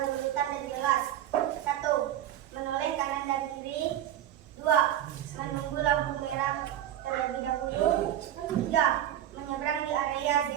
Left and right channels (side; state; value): left; quieter; 11.8 dB